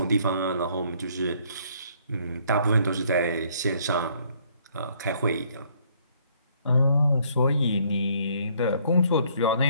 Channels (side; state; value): both; inverted; correlation -0.64